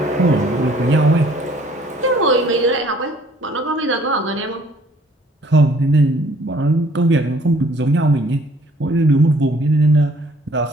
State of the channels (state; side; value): normal; both; correlation 0.59